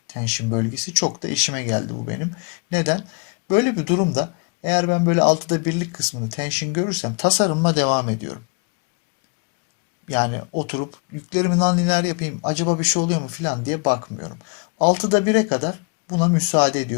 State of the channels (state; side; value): quieter; right; 34.1 dB